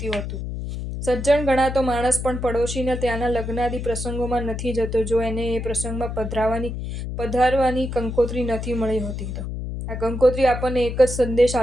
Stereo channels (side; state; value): left; noise; hum, 5 dB below the sound